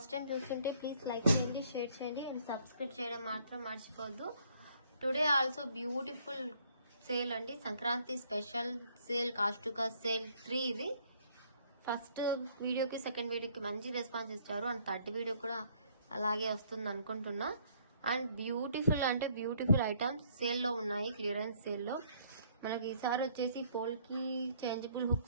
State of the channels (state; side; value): inverted; both; correlation -0.64